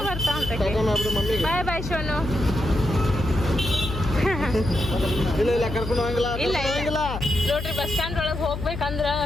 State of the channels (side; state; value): left; noise; hum, 7 dB below the sound